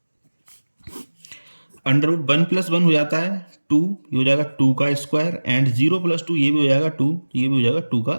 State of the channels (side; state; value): both; inverted; correlation -1.00